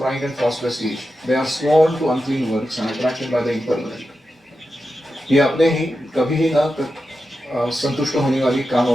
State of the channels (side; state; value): both; normal; correlation 0.90